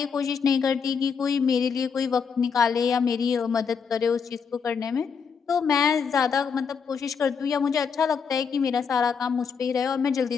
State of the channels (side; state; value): right; quieter; 6.1 dB